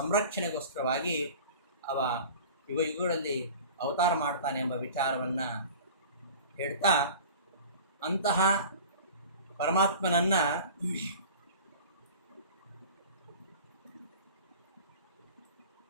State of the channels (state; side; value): inverted; both; correlation -0.40